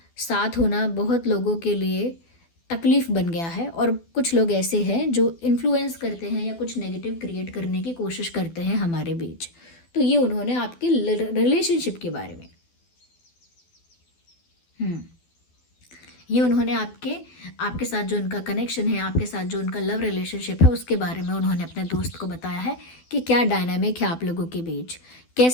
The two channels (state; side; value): late; right; 12 ms